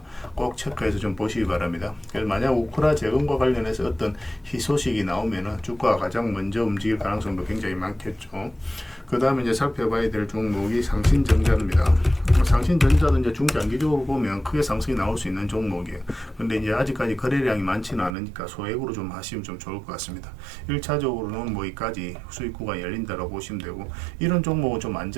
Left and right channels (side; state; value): left; drops out; at 18.2 s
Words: 꼭 체크해서 좀 보시기 바랍니다. 그래서 만약 우크라 재건과 관련해서 어떤 희소식이 나오면은 주가가 가장 먼저 움직일 가능성도 굉장히 많겠죠. 그 다음에 이제 살펴봐야 될 종목이 상신전자입니다. 상신전자도 이제 중장기적으로 보면 크게 상승이 나올 수 있는 종목이에요. 근데 이제 아직까지 거래량이 많지는 않으니까 소액으로 좀 하시면 좀 좋을 것 같습니다. 1차적으로는 뭐 이까지 수익 구간이 열린다고 보시면 되고, 이런 종목은 좀